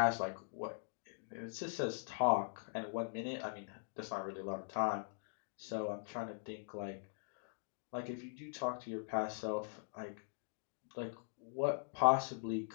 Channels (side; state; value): right; silent; digital silence